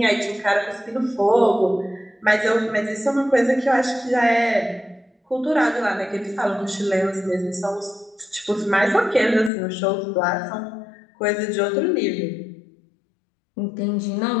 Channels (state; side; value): drops out; right; at 9.5 s